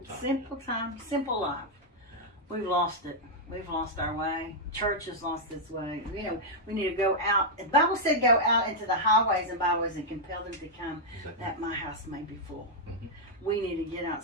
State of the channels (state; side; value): normal; both; correlation -0.04